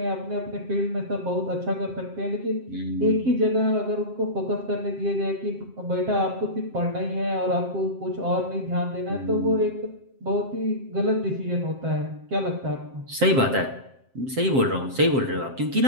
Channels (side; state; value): left; late; 7.6 ms